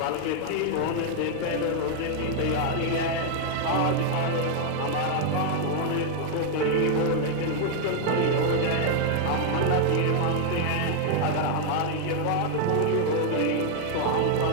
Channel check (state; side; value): different; both; correlation 0.00